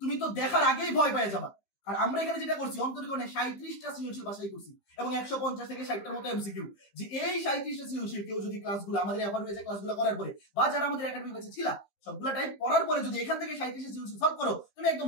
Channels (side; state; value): right; late; 15 ms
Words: তো দেখার আগেই ভয় পেয়ে যাবা। আর আমরা এখানে যেটা করছি অন্তরীকরণে 37টা সৃজনশীল বাছাই করছি এবং 150 থেকে 60টার মতো এমসিকিউ, যে এই 37টা সৃজনশীল কেউ যদি ক্লাসগুলো আমাদের এফআর হয়েছে ক্লাসগুলো করার পরে বা যারা আমাদের একাডেমি কাছে ছিল সবগুলা টাইপ পড়ার পরে যদি এখান থেকে 37টা সৃজনশীল সলভ করো, তুমি একদম